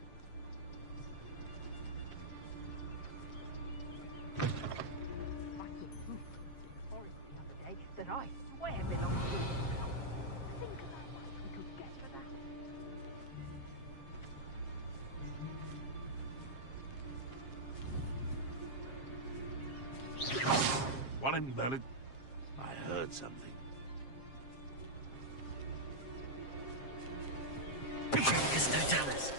Forest the other day that I swear belongs to. Think about what we could get for that. One in Merlin. I heard something. Bifurcus totalis.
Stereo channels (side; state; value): right; late; 7.5 ms